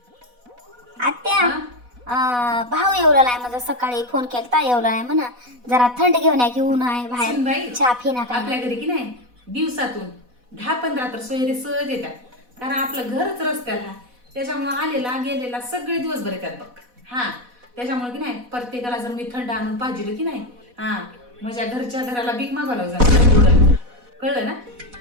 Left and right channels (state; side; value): late; left; 4.1 ms